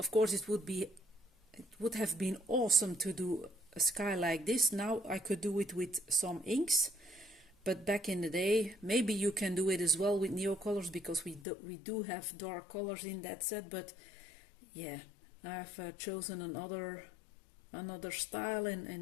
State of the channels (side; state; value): right; drops out; at 11.5 s